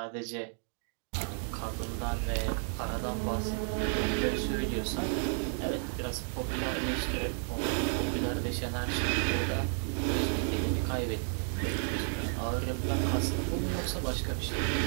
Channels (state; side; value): silent; left; 56 dB below the other